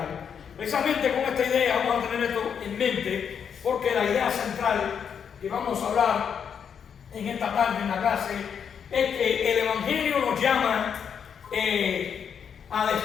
Precisamente con esta idea vamos a tener esto en mente, porque la idea central que vamos a hablar en esta tarde en la clase es que el Evangelio nos llama a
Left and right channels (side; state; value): right; quieter; 7.4 dB